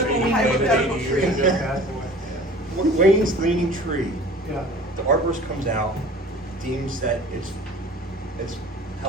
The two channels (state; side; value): normal; both; correlation 0.44